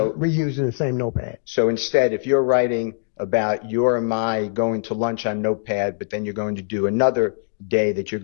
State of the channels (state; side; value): silent; right; digital silence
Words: reusing the same notepad. So instead, if you're writing about your and my going to lunch on Notepad, but then you're going to do another day that you're